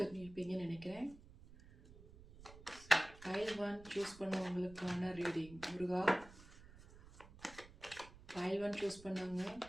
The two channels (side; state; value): right; noise; rumble, 19 dB below the sound